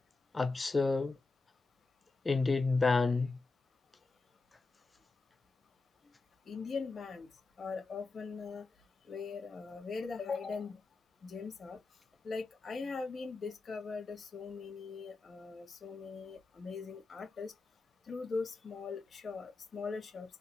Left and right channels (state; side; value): quieter; right; 3.8 dB